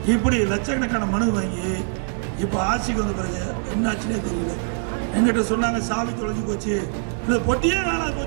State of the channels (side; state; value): left; silent; 61 dB below the other